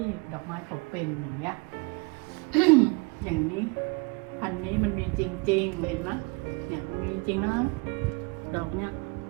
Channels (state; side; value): quieter; left; 29.4 dB